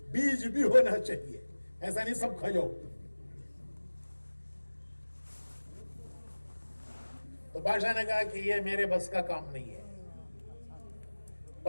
بیج بھی ہونا چاہیے، ایسا نہیں سب کھا جاؤ۔ تو بادشاہ نے کہا کہ یہ میرے بس کا کام نہیں ہے۔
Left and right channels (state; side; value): inverted; both; correlation -1.00